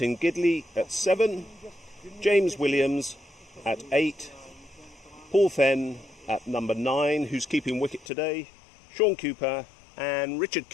Gidley at 7. James Williams at 8, Paul Fenn at number 9, who's keeping wicket today, Sean Cooper and Richard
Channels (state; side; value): drops out; right; at 8.1 s